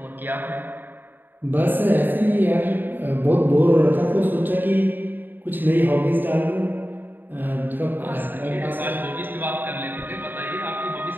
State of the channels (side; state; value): left; late; 0.092 ms